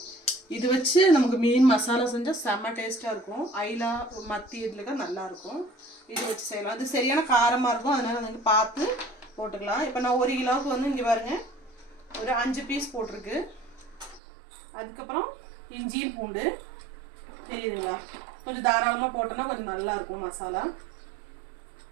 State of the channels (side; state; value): left; drops out; at 14.2 s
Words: இது வச்சு நமக்கு மீன் மசாலா செஞ்சால் செம்ம டேஸ்ட்டாக இருக்கும். ஐலா மத்தி இதில் நல்லாயிருக்கும். இது வச்சு செய்யலாம். அது சரியான காரமாக இருக்கும், அதனால் வந்து பார்த்து போட்டுக்கலாம். இப்போ நான் 1 கிலோவுக்கு வந்து இங்கே பாருங்கள் ஒரு 5 பீஸ் போட்டிருக்கு. அதுக்கப்புறம் இஞ்சியும் பூண்டு தெரியுதுங்களா, கொஞ்சம் தாராளமாக போட்டோன்னா கொஞ்சம் நல்லாயிருக்கும் மசாலா.